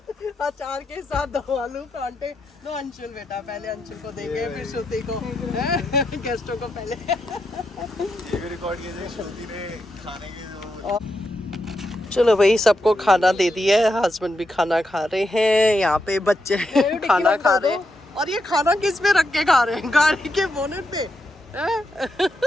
अचार के साथ दम आलू परांठे। लो अंशुल बेटा, पहले अंशुल को देंगे फिर श्रुति को, गेस्टों को पहले। रिकॉर्ड कीजिए श्रुति ने खाने की। चलो भाई सबको खाना दे दिया है, हस्बैंड भी खाना खा रहे हैं, यहाँ पे बच्चे खाना खा रहे हैं। और ये खाना किस पे रख के खा रहे हैं? गाड़ी के बोनेट पे।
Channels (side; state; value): both; normal; correlation 0.83